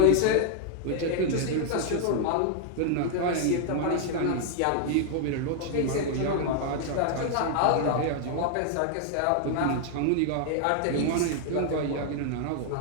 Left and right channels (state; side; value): different; both; correlation 0.00